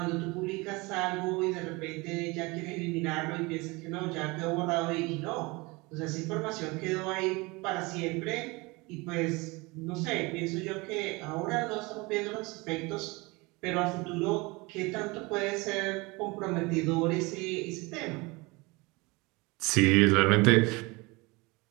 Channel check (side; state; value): left; quieter; 24.9 dB